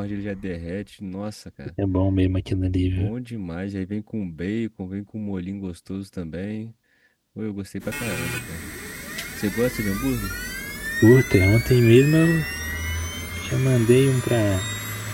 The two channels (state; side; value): identical; both; correlation 1.00